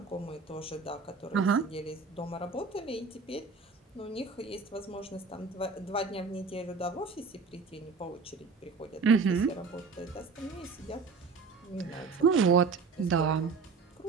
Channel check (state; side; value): quieter; left; 4.6 dB